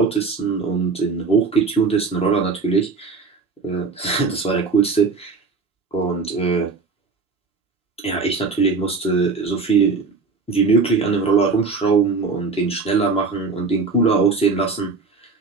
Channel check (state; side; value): quieter; left; 4.5 dB